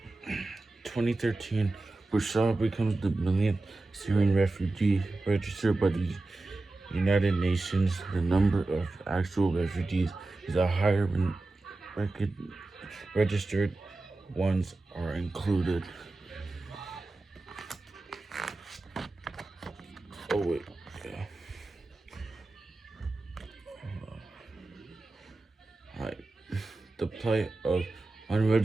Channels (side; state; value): left; quieter; 3.1 dB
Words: 2013, Bashar becomes the millionth Syrian refugee registered by the United Nations. The number of actual refugees is higher when registered ones are included. Oh wait, yeah. Alright. The plight of